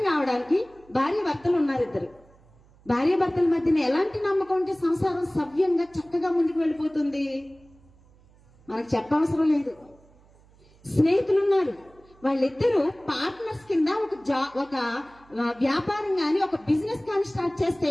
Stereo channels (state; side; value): noise; right; hum, 28 dB below the sound